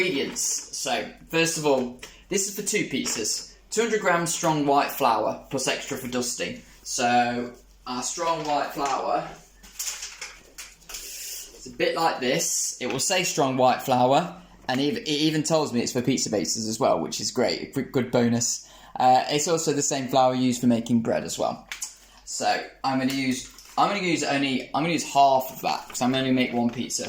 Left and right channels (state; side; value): identical; both; correlation 1.00